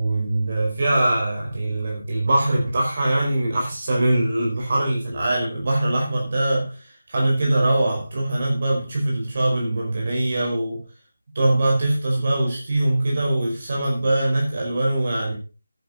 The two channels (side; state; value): both; inverted; correlation -0.95